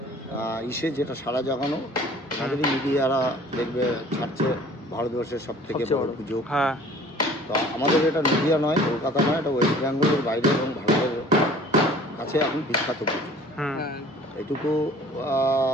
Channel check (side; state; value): both; normal; correlation 0.49